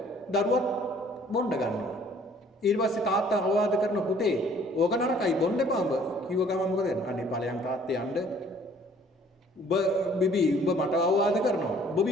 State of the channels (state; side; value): normal; both; correlation 0.56